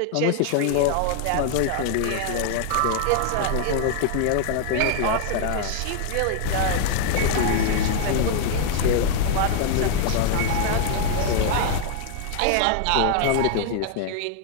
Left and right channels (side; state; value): both; different; correlation 0.00